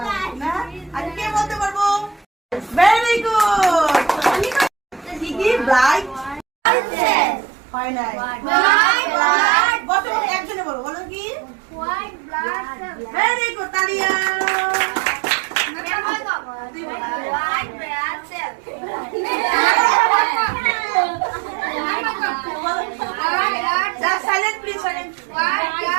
না আর কে বলতে পারবো ভেরি গুড কি ব্লাড সেল। হয় নাই হোয়াইট ব্লাড বলো একজনে বলো বলো কি white blood cell. Very good তালিয়া white blood cell. Just silent, please, silent. White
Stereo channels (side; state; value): left; drops out; at 6.5 s